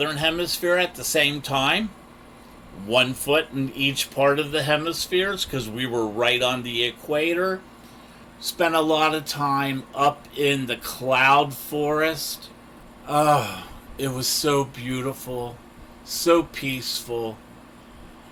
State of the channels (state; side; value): identical; both; correlation 1.00